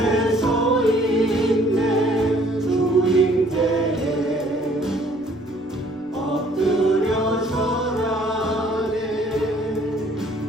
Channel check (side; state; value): left; noise; rumble, 28 dB below the sound